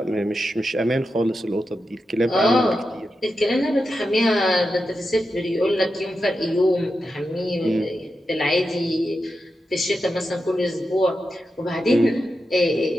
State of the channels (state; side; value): normal; both; correlation 0.89